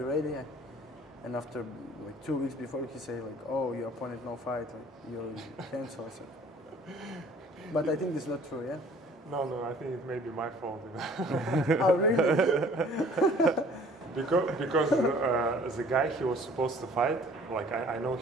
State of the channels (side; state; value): both; normal; correlation 0.53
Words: ready. And after like 2 weeks before, he say like, oh, your opponent no fight, like, you cancel. I said, but I think this is not true, yeah. No, I think it may be my fault. You know? Oh, really? because the guy he was supposed to fight, like I know